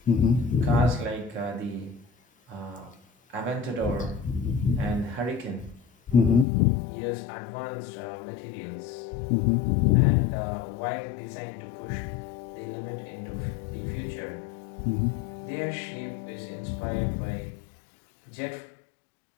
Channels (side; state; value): right; drops out; at 6.5 s